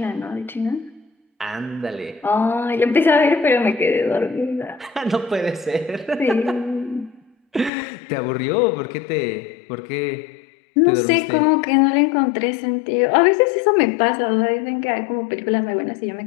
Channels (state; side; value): drops out; right; at 7.7 s